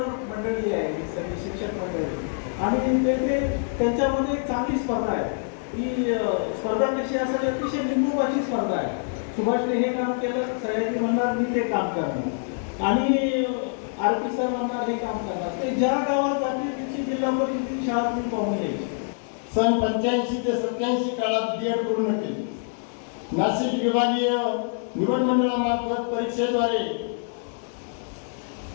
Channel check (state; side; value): silent; right; 61 dB below the other